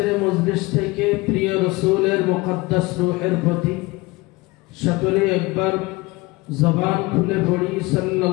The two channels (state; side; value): quieter; right; 22.6 dB